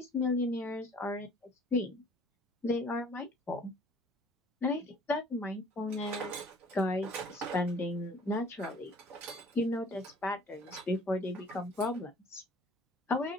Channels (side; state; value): both; normal; correlation 0.52